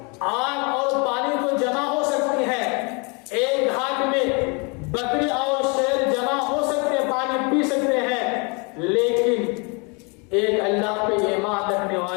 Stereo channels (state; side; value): quieter; right; 32.1 dB